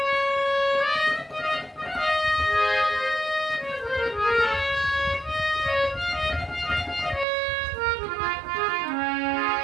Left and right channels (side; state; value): left; drops out; at 7.2 s